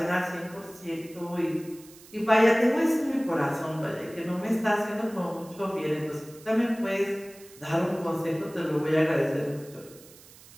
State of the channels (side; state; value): right; noise; hiss, 22 dB below the sound